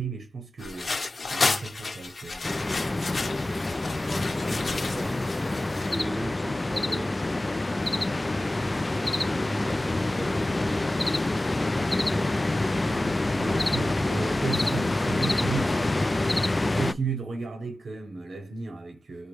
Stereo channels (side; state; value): both; normal; correlation 0.96